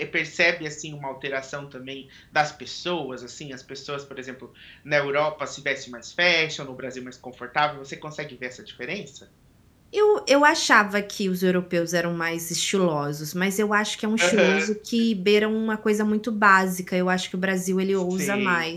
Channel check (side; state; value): both; identical; correlation 1.00